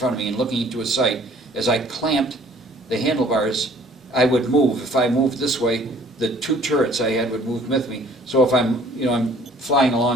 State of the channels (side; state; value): both; normal; correlation 0.55